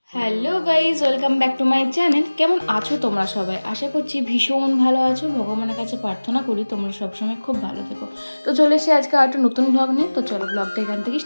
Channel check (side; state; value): both; inverted; correlation -1.00